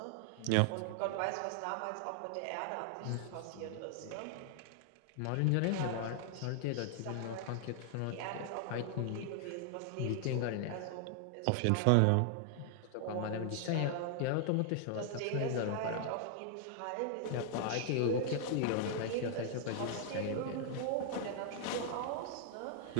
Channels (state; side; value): different; both; correlation 0.00